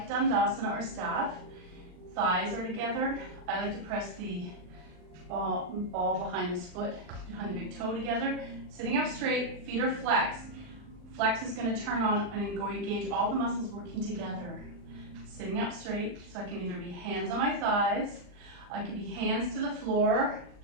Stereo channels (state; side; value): late; left; 39 ms